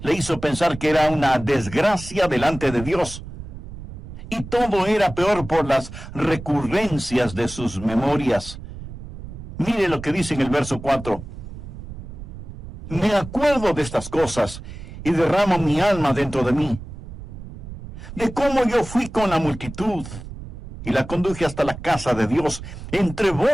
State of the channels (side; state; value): right; noise; rumble, 12 dB below the sound